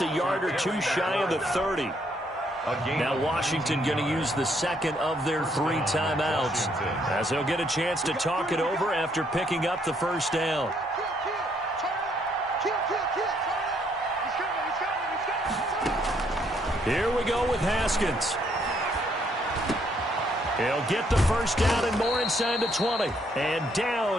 a yard or 2 shy of the 30. Now Washington going to use the second of their 3 timeouts, as they'll get a chance to talk it over after picking up the first down. Here we go with Haskins. He'll get the first down and more inside the 20. And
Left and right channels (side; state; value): both; normal; correlation 0.70